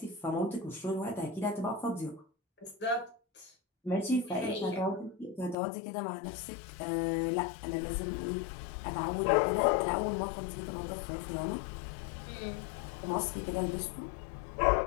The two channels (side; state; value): right; drops out; at 5.6 s